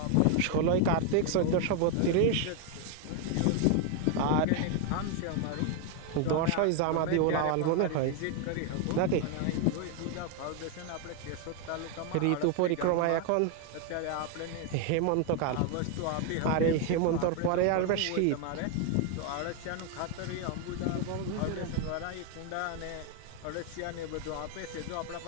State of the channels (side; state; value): both; different; correlation 0.01